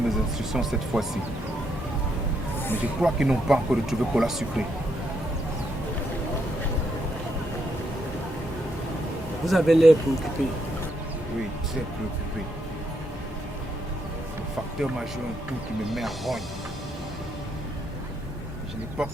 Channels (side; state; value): both; normal; correlation 0.77